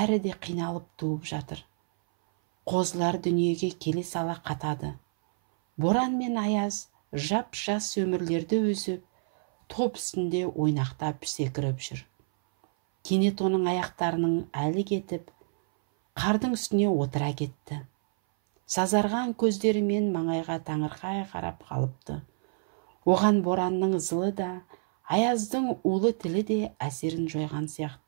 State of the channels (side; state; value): left; silent; 58 dB below the other